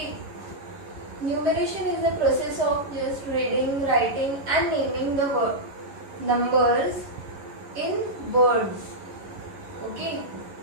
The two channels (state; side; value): late; left; 11 ms